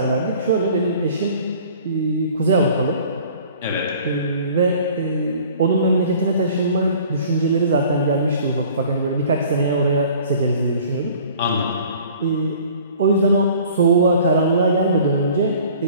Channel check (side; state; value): both; inverted; correlation -0.50